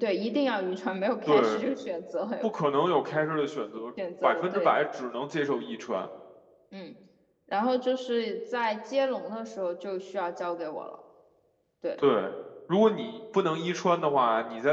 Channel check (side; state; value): both; identical; correlation 1.00